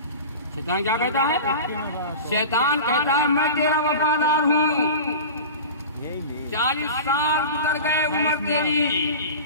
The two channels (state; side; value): inverted; both; correlation -0.33